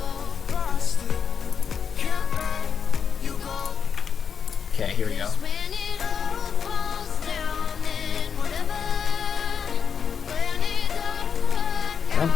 Okay, here we go. I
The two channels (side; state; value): right; quieter; 6.8 dB